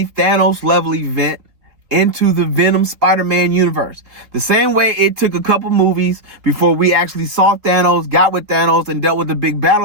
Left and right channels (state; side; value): late; left; 3.6 ms